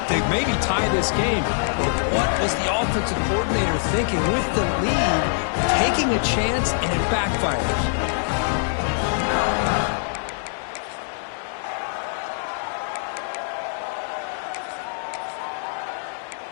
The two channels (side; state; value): right; silent; 63 dB below the other